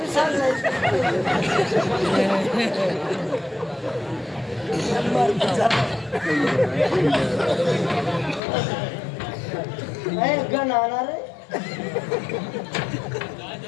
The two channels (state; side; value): drops out; right; at 8.4 s